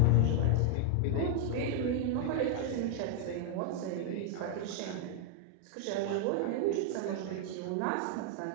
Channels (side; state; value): both; different; correlation 0.00